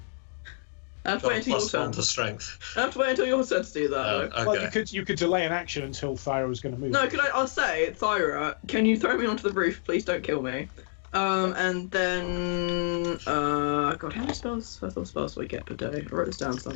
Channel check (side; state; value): right; silent; digital silence